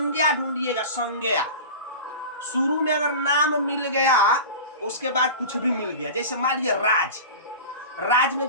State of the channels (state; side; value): inverted; both; correlation -0.32